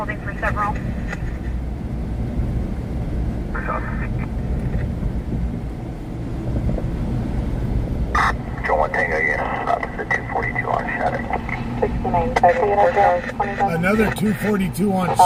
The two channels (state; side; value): identical; both; correlation 1.00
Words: for several. Joe 1 Tango unit, stop to the 242 on Shattuck. 6920 Another 242 on